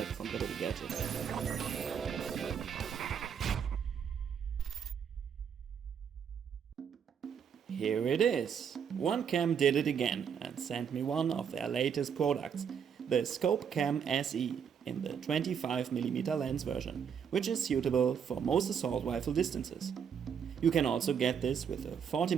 from the little gadget. Here it is! RunCam did it again and sent me one of their latest products, the ScopeCam SE, in the 25mm lens version, which is suitable for most assault rifle distances. You can also get this with a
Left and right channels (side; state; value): left; quieter; 7.5 dB